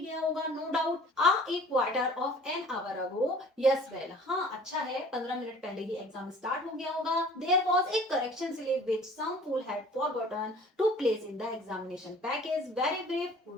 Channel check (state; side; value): normal; both; correlation 0.50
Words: होगा no doubt. A quarter of an hour ago, yes well, हाँ अच्छा है 15 मिनट पहले ही एग्जाम स्टार्ट हो गया होगा। There was a correction slip which some fool had forgotten to place in the examination package, very brief